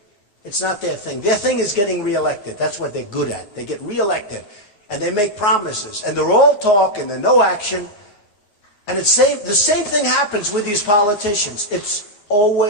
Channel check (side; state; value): right; late; 9.6 ms